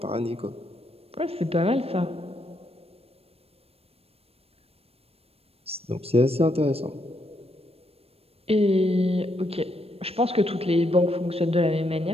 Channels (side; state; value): left; late; 0.28 ms